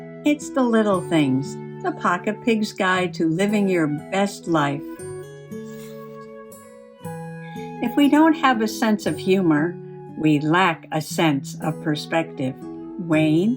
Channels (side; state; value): both; identical; correlation 1.00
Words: It's the little things, the Pocket Pig's Guide to Living Your Best Life. If we don't have a sense of humor, we lack a sense of perspective.